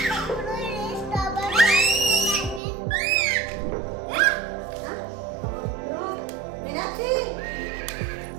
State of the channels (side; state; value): left; drops out; at 2.6 s